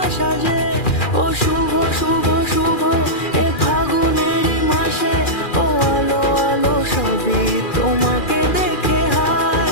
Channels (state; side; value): late; right; 2.4 ms